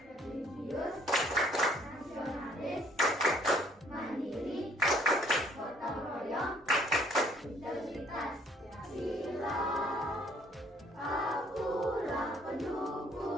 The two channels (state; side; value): normal; both; correlation 0.61